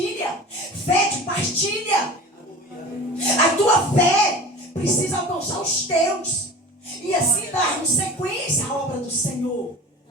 Fé que partilha. A tua fé precisa alcançar os teus. E assim darmos sequência à obra do Senhor.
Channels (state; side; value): normal; both; correlation 0.37